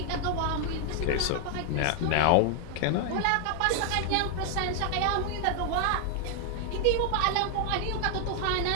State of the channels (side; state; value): both; different; correlation 0.00